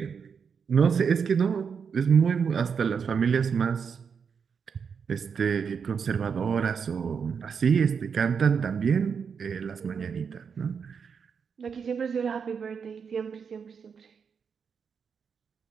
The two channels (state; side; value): quieter; left; 6.4 dB